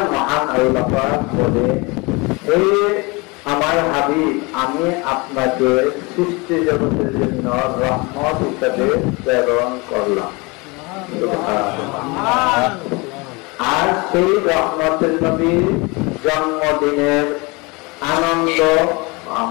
মহান আল্লাহ পাক বলে, হে আমার হাবিব, আমি আপনাকে সৃষ্টি জগতের জন্য রহমত হিসাবে প্রেরণ করলাম। আর সেই রহমতের নবীর জন্মদিনের আনন্দ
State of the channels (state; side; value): quieter; right; 26.8 dB